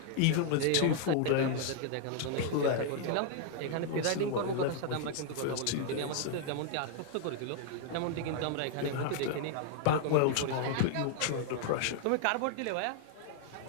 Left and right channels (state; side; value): different; both; correlation -0.01